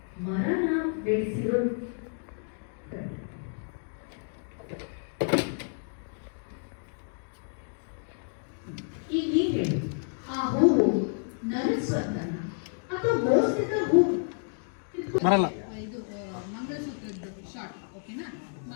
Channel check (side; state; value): right; silent; 58 dB below the other